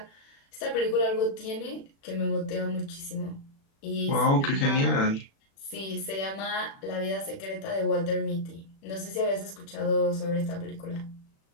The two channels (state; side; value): late; right; 36 ms